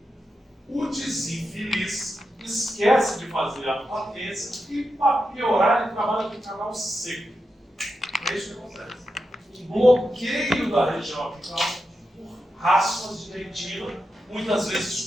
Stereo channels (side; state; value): both; normal; correlation 0.88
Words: O desinfeliz esquece de fazer a patência e, para piorar, ele trabalha com o canal seco. É isso que acontece. Um bloqueio da região apical por raspas de dentina, muitas